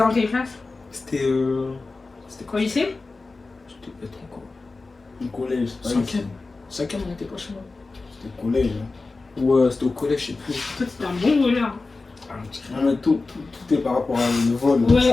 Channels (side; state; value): right; quieter; 3.7 dB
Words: dans quelle classe? C'était. C'était Au quoi? lycée? C'était peut-être encore. Au collège. Cinquième. Cinquième, on était pas chez moi. C'était au collège. Ouais, c'était au collège, je sais plus. Toi, t'étais un bon voleur. Ah, on dirait- Non, mais tout est par rapport à le vol.